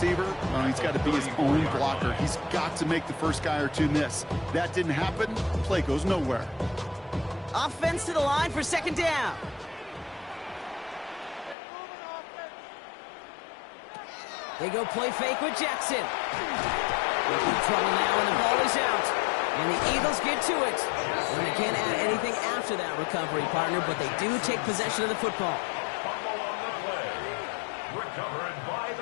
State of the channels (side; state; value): right; drops out; at 11.6 s